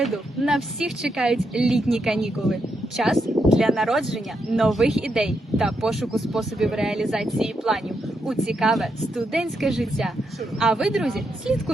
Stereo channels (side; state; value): both; normal; correlation 0.82